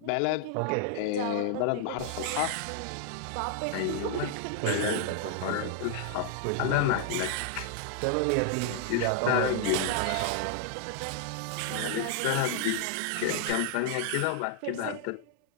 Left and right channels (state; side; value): different; both; correlation 0.00